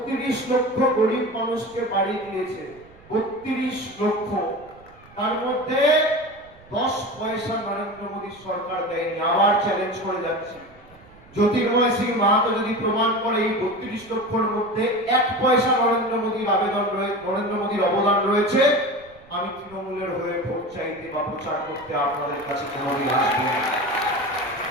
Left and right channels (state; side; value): noise; right; rumble, 25 dB below the sound